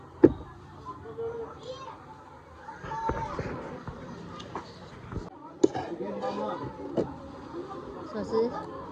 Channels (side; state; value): both; identical; correlation 1.00